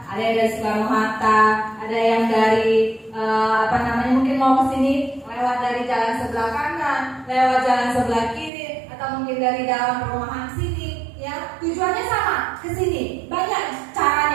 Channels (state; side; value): drops out; left; at 8.5 s